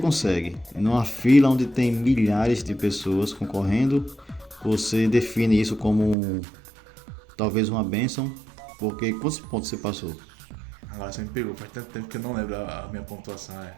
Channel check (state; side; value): drops out; left; at 6.2 s